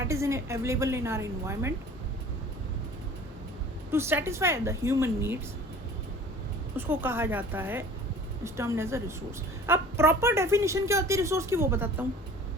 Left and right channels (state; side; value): normal; both; correlation 0.45